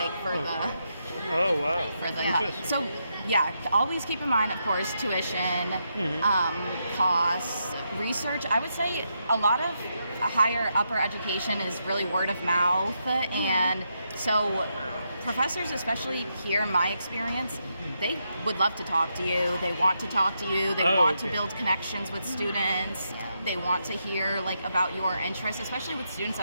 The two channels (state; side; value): inverted; both; correlation -0.82